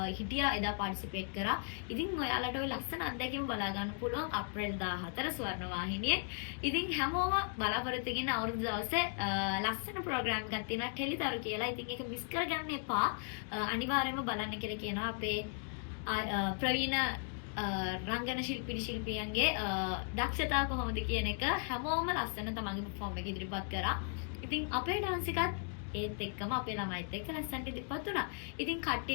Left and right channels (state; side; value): silent; right; 53 dB below the other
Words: හිටියා එදා පාටිසිපේට් කරා. ඉතින් ඔයාලට ওই ලස්සන අත්දැකීම බලා ගන්න පුළුවන් අප්‍රේල් 14 ස්වර්ණවාහිනියේ. ඉතින් හැමෝම බලාපොරොත්තු වෙන අවුරුදු දවසේ ලස්සන ප්‍රෝග්‍රෑම් එකක් තියෙනවා ටෙලිතරු කියලා. ඉතින් ඒක මිස් කරගන්න එපා. අනිවාර්යයෙන්ම බලන්න කියලා කියනවා අපේ ප්‍රවීණ රංගන ශිල්පියන්ගේ දක්ෂතා කොහොමද කියන එක හැමෝම ලස්සන තමන්ගේ perform එක ඉදිරිපත් කරා. ඉතින් අපේ dance එකත් ඒත් එක්කම අපේ ළමයිත් එක්ක ලස්සනට ඉදිරිපත් වුණා. ඉතින්